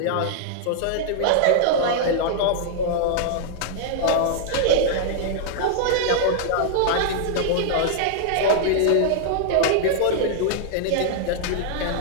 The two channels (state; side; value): different; both; correlation -0.01